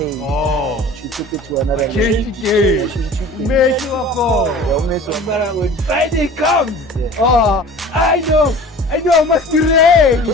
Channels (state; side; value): normal; both; correlation 0.42